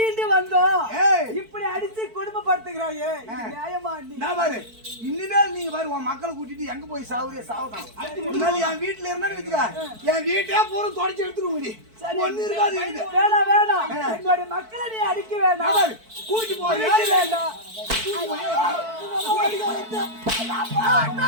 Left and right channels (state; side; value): late; left; 4.5 ms